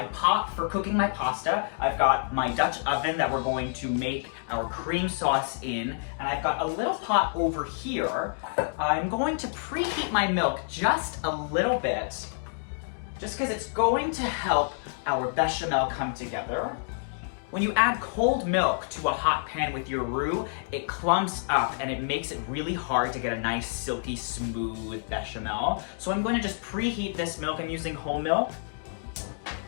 pot for cooking my pasta, I've got my Dutch oven that we're going to make our cream sauce in, and I've got a little pot over here. I'm going to preheat my milk just a little bit, just because it's going to help our bechamel come together. When you add cold milk to a hot pan with your roux, it clumps up and it makes it really hard to get a nice silky smooth bechamel. So I'm going to just preheat this milk. I'm using whole milk.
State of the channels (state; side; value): silent; right; digital silence